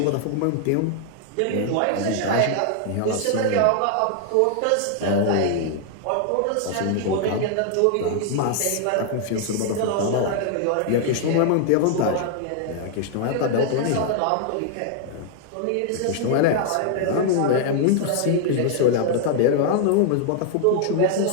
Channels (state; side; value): different; both; correlation 0.00